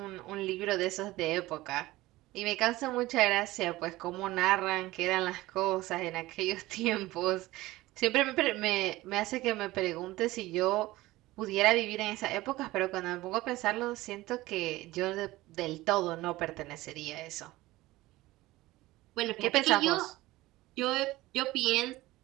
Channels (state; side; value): quieter; left; 18.3 dB